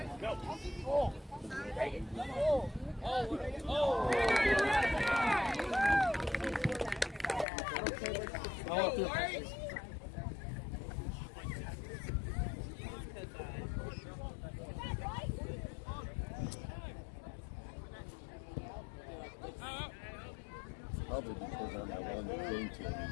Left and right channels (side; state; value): right; drops out; at 7.5 s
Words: Probably because on that one that came to